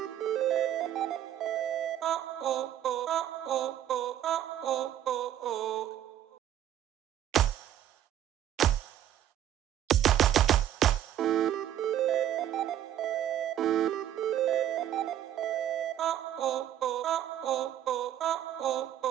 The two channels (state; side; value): quieter; left; 11.2 dB